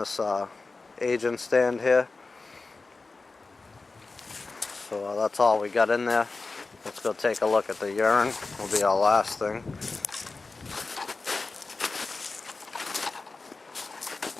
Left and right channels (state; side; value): quieter; right; 3.8 dB